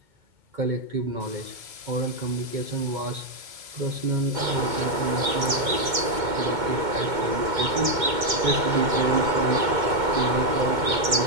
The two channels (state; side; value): late; left; 2.2 ms